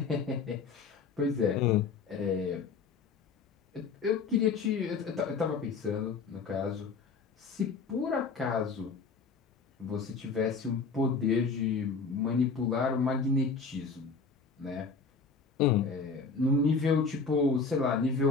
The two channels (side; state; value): right; quieter; 4.9 dB